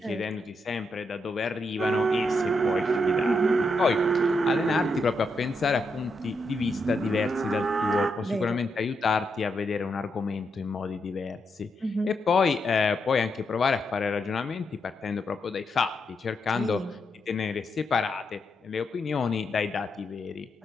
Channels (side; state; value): both; normal; correlation 0.82